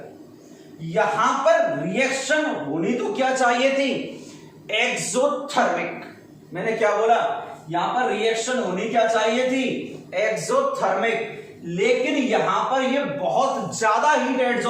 यहां पर रिएक्शन होनी तो क्या चाहिए थी? एक्सोथर्मिक। मैंने क्या बोला? यहां पर रिएक्शन होनी क्या चाहिए थी? एक्सोथर्मिक। लेकिन यहां पर ये बहुत ज्यादा हीट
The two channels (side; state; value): both; identical; correlation 1.00